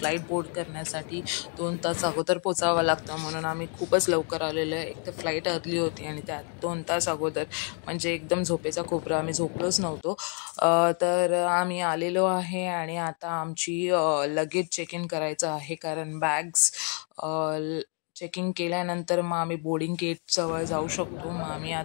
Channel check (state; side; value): quieter; right; 39.8 dB